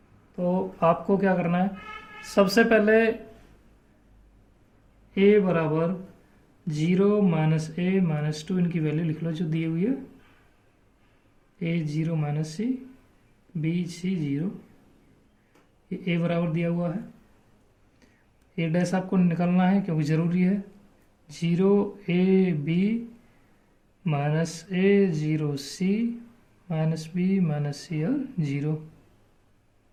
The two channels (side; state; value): both; identical; correlation 1.00